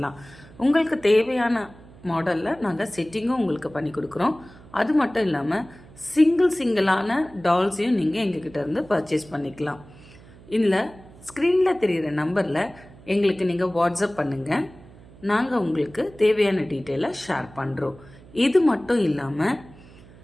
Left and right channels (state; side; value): noise; right; hum, 22 dB below the sound